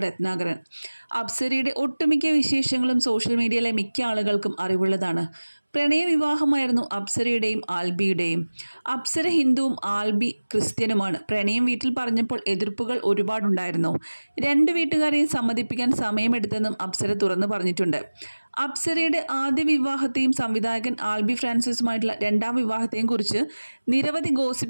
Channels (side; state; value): both; inverted; correlation -1.00